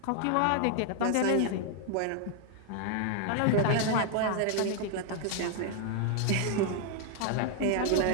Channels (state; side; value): different; both; correlation 0.00